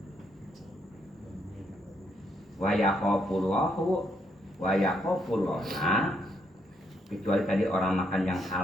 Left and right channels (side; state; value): both; normal; correlation 0.75